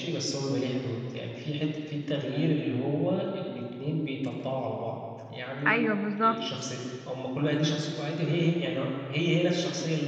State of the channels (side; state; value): both; identical; correlation 1.00